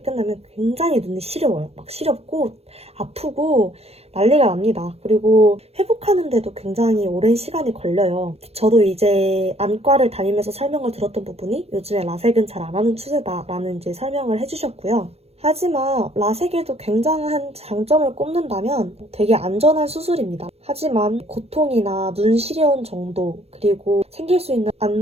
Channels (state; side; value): late; left; 0.30 ms